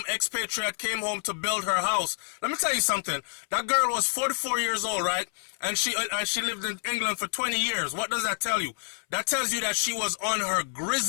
expatriate, came home to build her house. Let me tell you something. That girl was 44 years old, right? And she lived in England for 20 years. What does that tell you? That tells you that she was on her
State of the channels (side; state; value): right; silent; 59 dB below the other